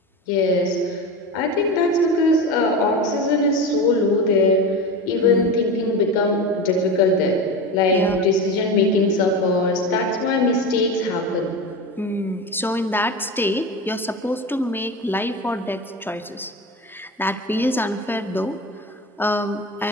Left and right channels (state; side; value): normal; both; correlation 0.25